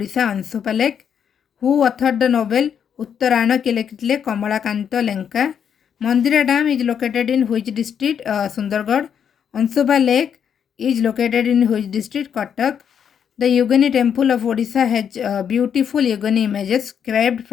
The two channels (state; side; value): quieter; right; 8.0 dB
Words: Ansupa Lake. Who authored the novel Uttarana Kilekile Kamalakanta Lenka? Mandira Dam is located in which district? Sundargarh. Ansupa Lake is located in which district? Cuttack. The Yogini temple of Odisha has beautiful Yogini images carved